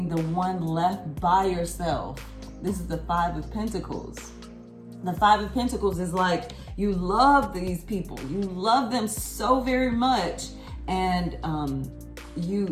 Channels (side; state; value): both; identical; correlation 1.00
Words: the one left by yourself. This is the Five of Pentacles. The Five of Pentacles is like, you love these people. You love them so very much. And